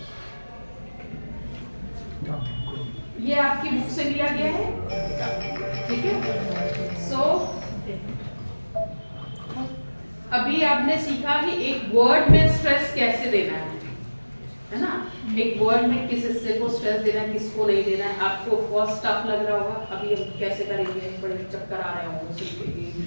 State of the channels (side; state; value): both; inverted; correlation -1.00